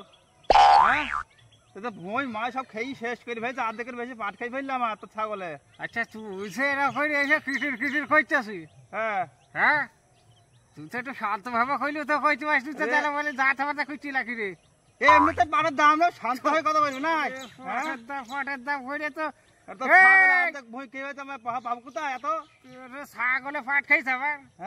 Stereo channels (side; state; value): both; identical; correlation 1.00